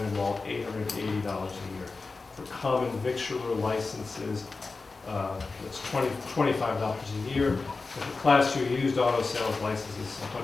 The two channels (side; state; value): right; quieter; 4.0 dB